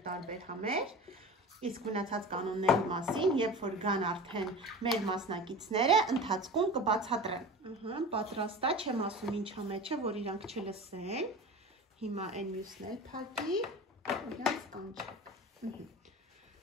տարբեր համեր, իսկ մնացած կանոնների մասին, երբ որ գան արդեն մեր մասնակիցները, ընթացքում կբացատրեմ։ Պատրաստ է, չեմ ասում ինչ է մեջը, որ իրանք չլսեն։ Հիմա այն մյուսն էլ փակի, իրանց կանչեք։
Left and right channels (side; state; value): both; normal; correlation 0.34